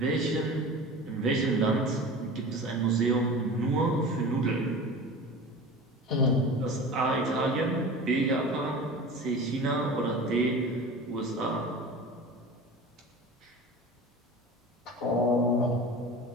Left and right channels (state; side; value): normal; both; correlation 0.35